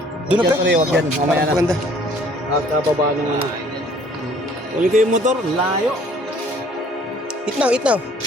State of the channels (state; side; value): normal; both; correlation 0.57